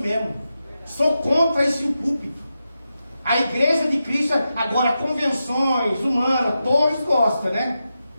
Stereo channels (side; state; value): both; inverted; correlation -0.89